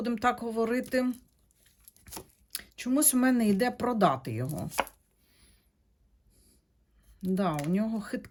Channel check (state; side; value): identical; both; correlation 1.00